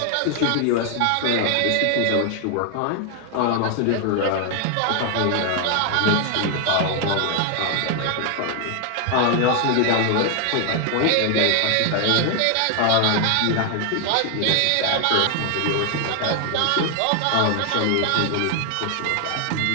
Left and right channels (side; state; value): both; different; correlation 0.00